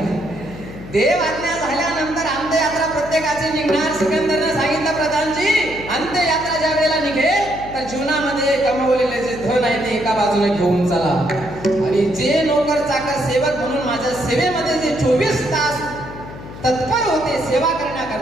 देवाज्ञा झाल्यानंतर अंत्ययात्रा प्रत्येकाची निघणार. सिकंदरनं सांगितलं प्रधानजी अंत्ययात्रा ज्या वेळेला निघेल तर जीवनामध्ये कमवलेले जे धन आहे ते एका बाजूने घेऊन चला आणि जे नोकर चाकर सेवक म्हणून माझ्या सेवेमध्ये जे 24 तास तत्पर होते सेवा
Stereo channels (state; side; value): noise; left; hum, 14 dB below the sound